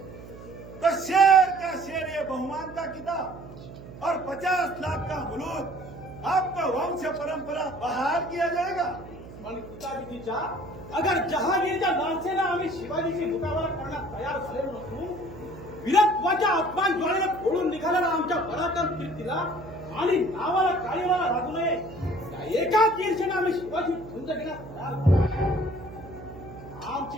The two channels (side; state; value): right; noise; hum, 15 dB below the sound